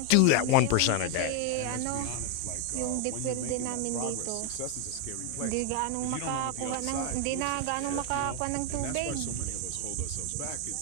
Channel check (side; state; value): both; different; correlation 0.01